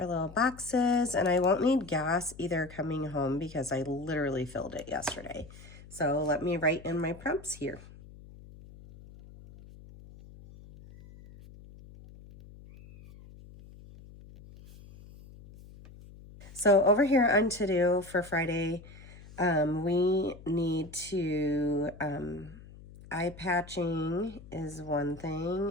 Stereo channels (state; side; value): noise; left; hum, 19 dB below the sound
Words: little boxes, and I won't need gas either coming home because I literally filled it yesterday. So let me write in my prompts here. So over here on to-do for Friday, we need to, eye patching is one